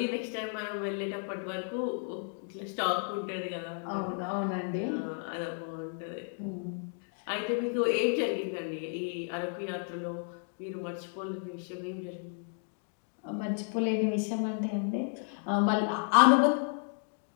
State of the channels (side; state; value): right; silent; 56 dB below the other